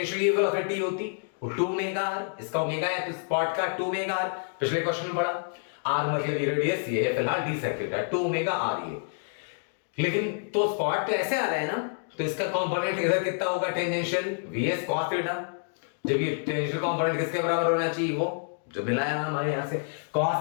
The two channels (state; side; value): silent; right; digital silence